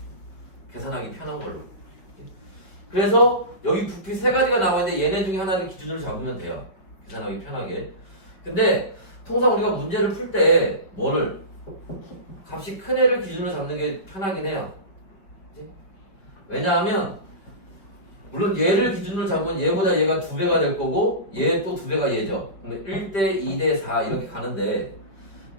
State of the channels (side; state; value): right; late; 5.0 ms